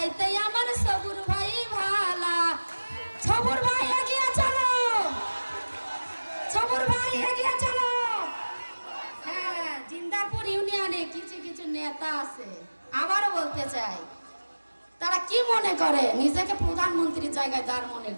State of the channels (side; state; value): both; inverted; correlation -1.00